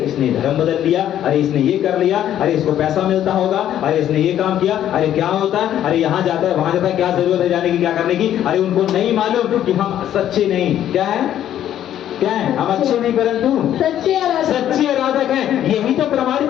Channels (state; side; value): quieter; right; 11.2 dB